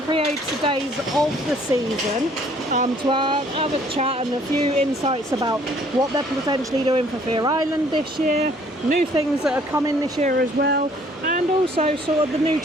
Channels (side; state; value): both; normal; correlation 0.59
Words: creator days of the season to have a chat and a few insights about what they're potentially doing for Fear Island this year, new things that are coming this year as well, and also sort of the new